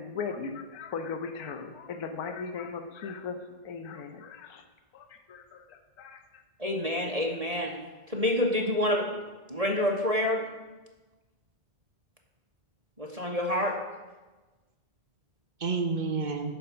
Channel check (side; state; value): left; late; 1.7 ms